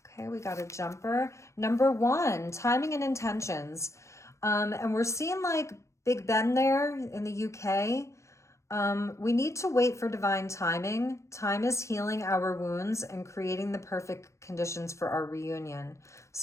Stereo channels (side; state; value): right; late; 0.14 ms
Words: Okay, we got a jumper. Number 1, timing and intentions. And we're seeing like Big Ben there in the UK. We need to wait for divine timing. Time is healing our wounds and creating the perfect conditions for our reunion.